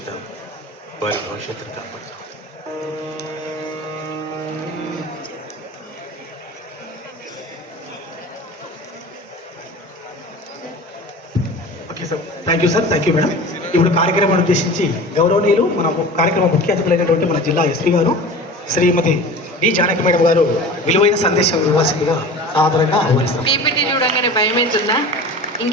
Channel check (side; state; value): both; normal; correlation 0.36